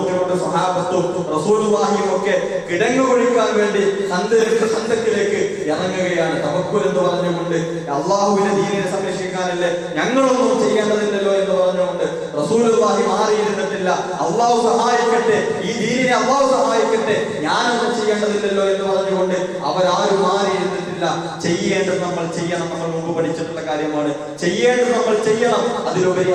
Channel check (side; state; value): both; identical; correlation 1.00